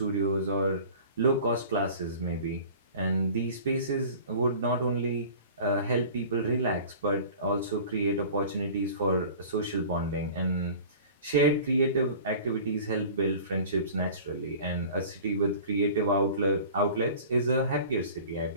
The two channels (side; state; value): both; inverted; correlation -0.42